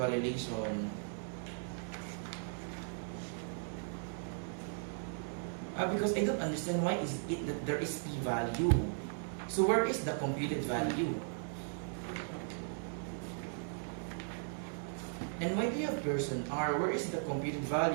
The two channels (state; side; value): silent; left; 53 dB below the other